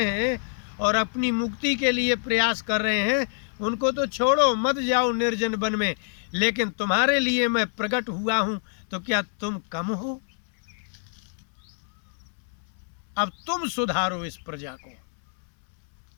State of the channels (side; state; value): right; silent; 61 dB below the other